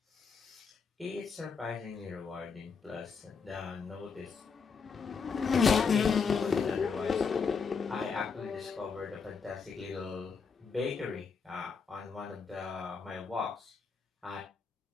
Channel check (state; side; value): quieter; right; 5.5 dB